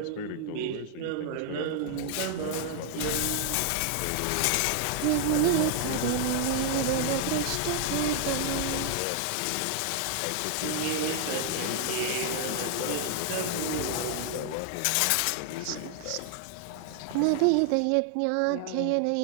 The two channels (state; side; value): different; both; correlation 0.00